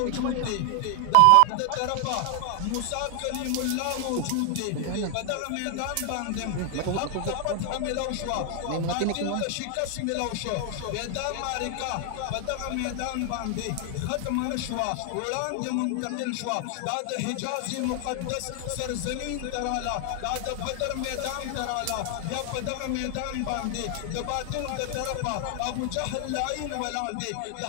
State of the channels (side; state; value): both; different; correlation 0.00